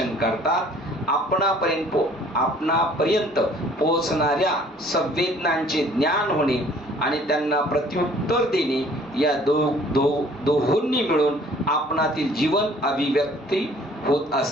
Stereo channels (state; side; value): normal; both; correlation 0.55